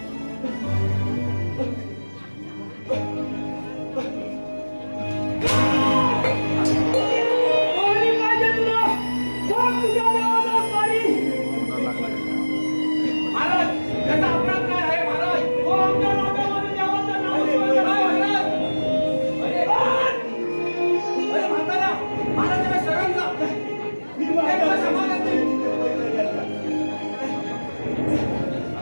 पाणी पाहिजे तुला. बघ तुझ्या देवाला पाणी. महाराज, याचा अपराध काय आहे महाराज? हो, आमच्या नागामध्ये देवाचं नाव स्मरण आहे महाराज. अरे म्हातारा, महाराजांना शरण जा. हे तुला समाधान देईल.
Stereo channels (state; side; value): inverted; both; correlation -1.00